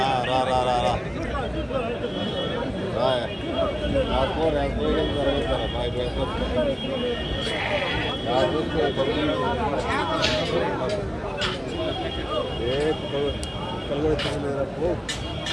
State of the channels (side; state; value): both; identical; correlation 1.00